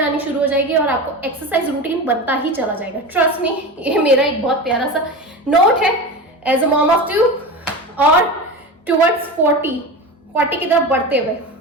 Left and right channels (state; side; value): normal; both; correlation 0.27